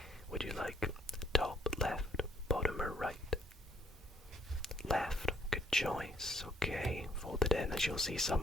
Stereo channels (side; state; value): both; normal; correlation 0.64